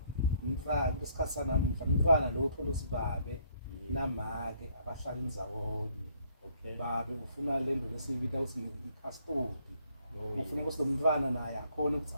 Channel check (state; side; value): inverted; both; correlation -0.66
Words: mfana isikhathi sanamhla umfana lo uthola usibabe namake abahlala indawonye babe ufuna lento lesiyibita ukuthi ikhastodi ufuna ukuthi lo mntwana naye akhona ukuthi